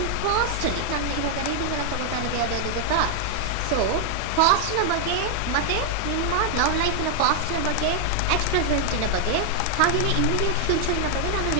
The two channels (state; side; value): different; both; correlation 0.00